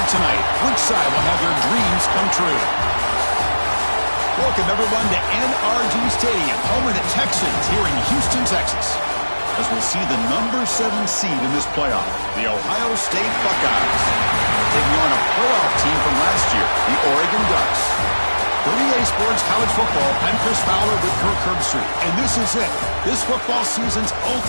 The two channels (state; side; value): inverted; both; correlation -1.00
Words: tonight. Which side will have their dreams come true? Welcome, everyone, to NRG Stadium, home of the Texans here in Houston, Texas, as we'll see the number 7 seed in this playoff, the Ohio State Buckeyes, taking on a playoff team from last year, the Oregon Ducks. For EA Sports College Football, I'm Chris Fowler with Kirk Herbstreit, and this is it. This football season's